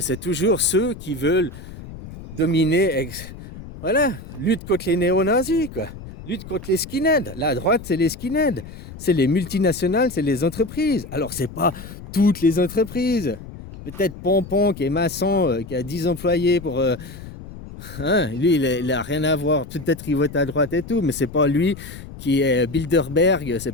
c'est toujours ceux qui veulent dominer, voilà, lutte contre les néo-nazis, quoi. Lutte contre les skinheads. La droite, c'est les skinheads. C'est les multinationales, c'est les entreprises. Alors, c'est pas toutes les entreprises. Peut-être Pompon, qui est maçon, qui a 10 employés pour... lui, il a rien à voir. Peut-être il vote à droite et tout, mais c'est pas lui qui est Bilderberg,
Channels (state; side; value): noise; left; rumble, 14 dB below the sound